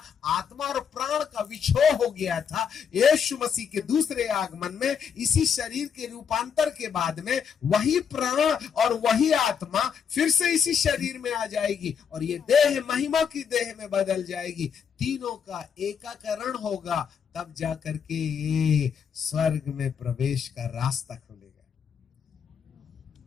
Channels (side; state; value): right; quieter; 7.1 dB